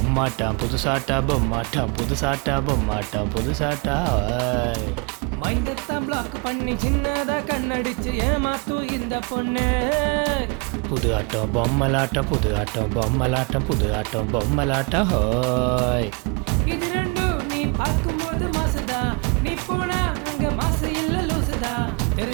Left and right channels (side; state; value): left; quieter; 32.3 dB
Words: புதுசாட்டா பொம்மாட்டம் புதுசாட்டா பொம்மாட்டம் புதுசாட்டா மைண்டத்தை black பண்ணி சின்னதா கண்ணடிச்சு ஏமாத்து இந்த பொண்ணு. புது ஆட்டம் பொம்மலாட்டம் புது ஆட்டம் பொம்மலாட்டம் புது ஆட்டம் பொம்மலாட்டம் ஹோய். இது ரெண்டும் நீ பார்க்கும்போது மாசுதா, நீ போனா அங்க மாசு இல்ல லூசுதா.